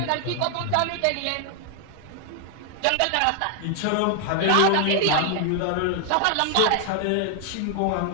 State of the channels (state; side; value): different; both; correlation 0.00